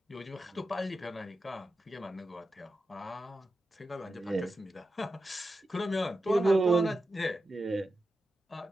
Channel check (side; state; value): both; normal; correlation 0.90